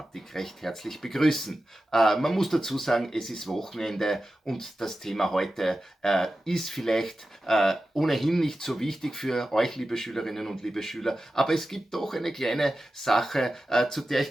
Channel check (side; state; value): both; normal; correlation 0.93